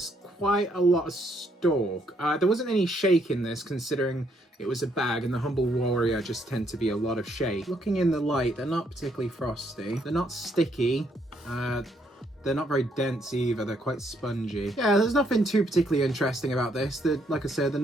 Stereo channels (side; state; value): both; normal; correlation 0.72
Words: quite a lot of stalk. There wasn't any shake in this considering it was a bag, and the Humble Warrior just tend to be a lot of shake. Looking in the light, they're not particularly frosty. They're not sticky. They're not very dense either. They're quite spongy. Yeah, there's nothing too particularly interesting about this. Like I said, the